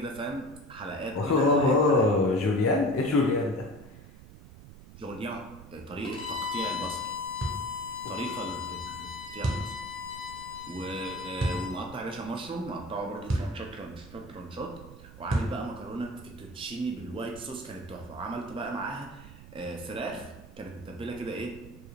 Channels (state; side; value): noise; right; rumble, 17 dB below the sound